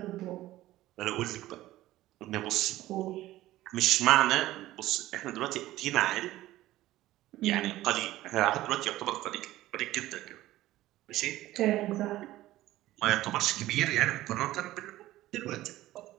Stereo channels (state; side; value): quieter; left; 15.7 dB